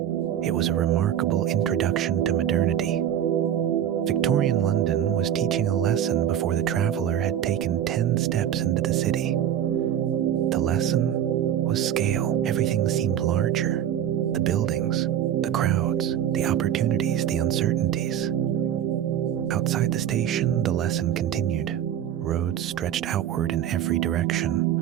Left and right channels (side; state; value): left; quieter; 10.3 dB